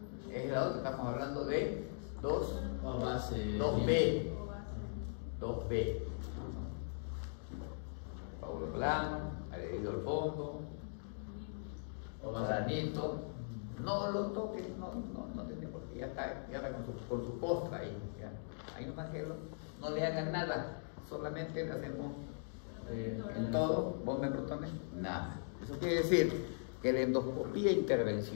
Es el lado que estamos hablando de 2. O base. 2B. 2B. Coágulo plano, adherido al fondo, O base. granito. No lo toques, no tiene por qué, ya está con su postra ahí. Ya. Ahí nomás que no le hagan nada, solamente le hacemos en todo, bomba de protones, nada. Eso quiere decir que la endoscopía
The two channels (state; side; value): silent; right; digital silence